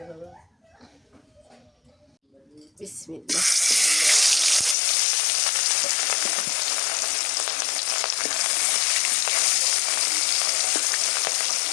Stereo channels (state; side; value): drops out; right; at 4.8 s